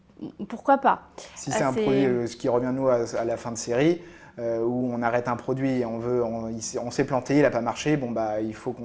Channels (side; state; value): both; identical; correlation 1.00